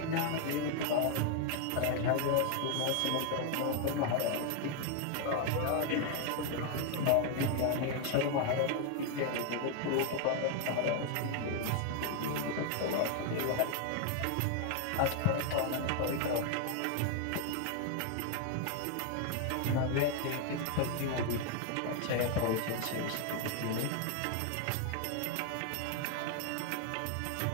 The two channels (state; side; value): different; both; correlation 0.00